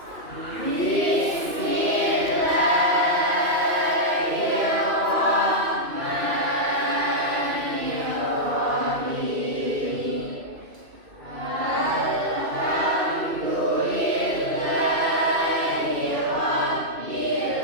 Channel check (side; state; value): left; late; 2.6 ms